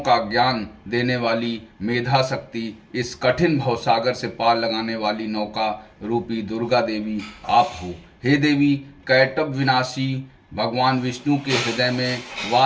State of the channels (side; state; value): both; identical; correlation 1.00